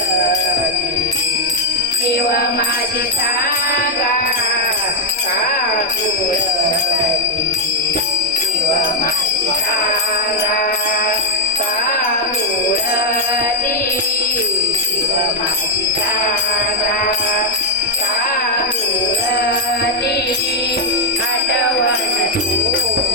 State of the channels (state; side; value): normal; both; correlation 0.02